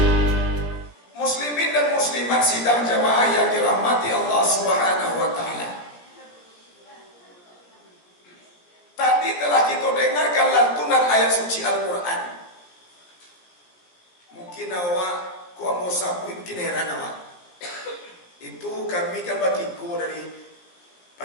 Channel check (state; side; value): late; right; 17 ms